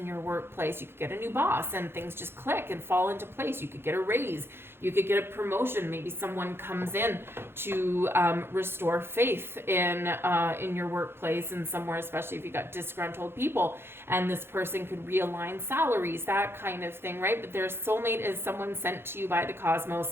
your workplace. You could get a new boss and things just click and fall into place. You could get a raise. You could get a promotion. Maybe someone comes in to restore faith in your workplace and somewhere, especially if you got disgruntled people, and this person could realign salaries, that kind of thing, right? But their soulmate is someone sent to you by the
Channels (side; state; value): left; late; 0.11 ms